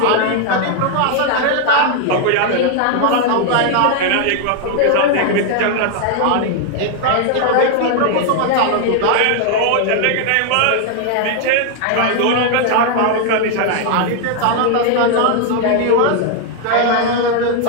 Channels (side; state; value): both; different; correlation 0.00